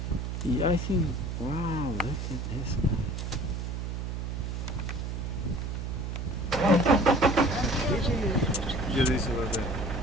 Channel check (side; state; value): right; noise; hum, 4 dB below the sound